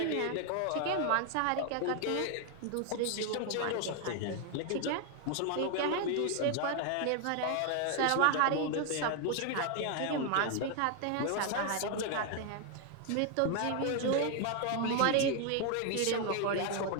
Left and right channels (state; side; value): different; both; correlation 0.00